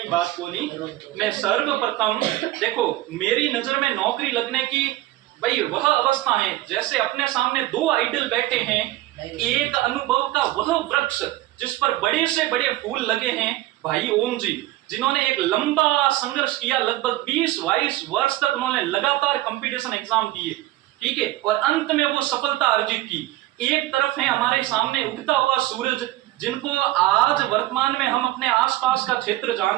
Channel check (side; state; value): left; quieter; 16.8 dB